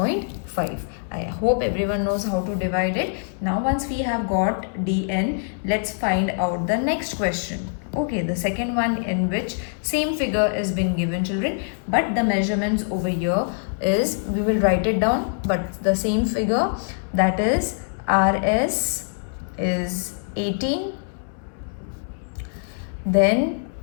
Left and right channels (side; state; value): right; silent; 63 dB below the other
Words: I hope everyone knows how to divide it. Now once we have got dn, let's find out the next question. Okay, the second one in which same figure is been given, children, but the measurements over here is, we will write it down, but the same figure, that is rs is 18, then